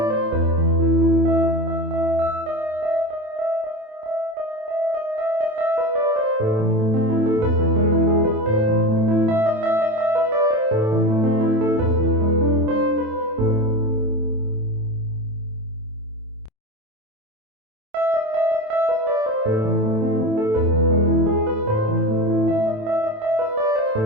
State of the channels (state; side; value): late; left; 27 ms